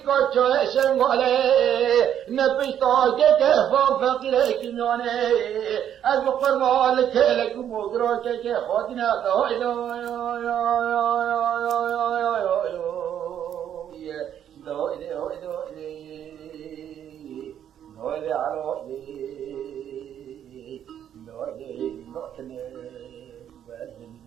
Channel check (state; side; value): quieter; left; 9.8 dB